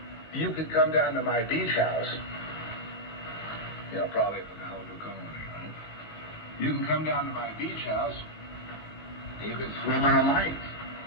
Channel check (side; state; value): right; late; 19 ms